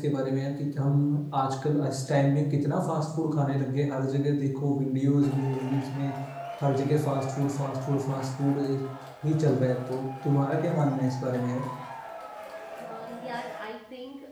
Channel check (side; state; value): both; identical; correlation 1.00